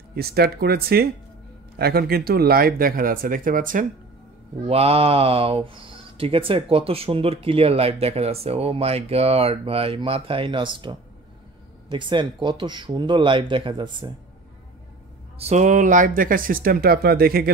স্টার্ট করেছি, এখন কিন্তু লাইভ দেখা যাচ্ছে, দেখতে পাচ্ছেন। ওয়াও, ঠিক আছে, কত সুন্দর ক্লিয়ার লাইভ দেখা যাচ্ছে। ও মাই গড ভাই, মাথায় নষ্ট, দেখছেন কত সুন্দর লাইভ দেখা যাচ্ছে। সো লাইভ দেখার সিস্টেমটা আপনারা দেখে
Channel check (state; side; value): quieter; left; 3.4 dB